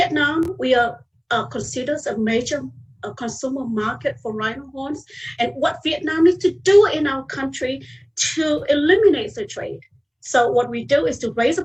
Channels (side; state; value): both; identical; correlation 1.00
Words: we are considered a major consumer market for rhino horns, and what Vietnam needs to do in our country to eliminate the trade. So what we do is to raise the